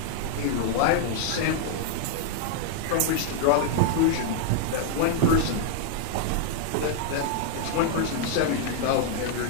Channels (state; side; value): different; both; correlation -0.01